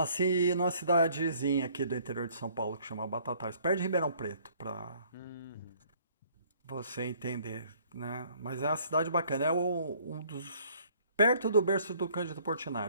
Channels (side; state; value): both; inverted; correlation -0.60